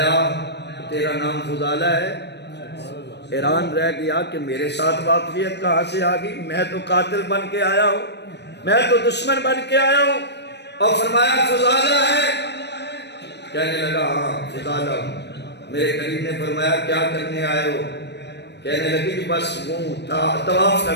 تیرا نام فضالہ ہے؟ حیران رہ گیا کہ میرے ساتھ واقفیت کہاں سے آ گئی، میں تو قاتل بن کے آیا ہوں، میں تو دشمن بن کے آیا ہوں۔ اور فرمایا فضالہ ہے؟ کہنے لگا ہاں فضالہ ہوں۔ میرے کریم نے فرمایا کیا کرنے آئے ہو؟ کہنے لگی کہ بس وہ طواف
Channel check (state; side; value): late; right; 0.50 ms